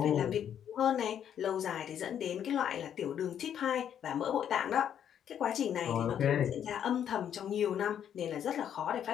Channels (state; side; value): quieter; right; 9.3 dB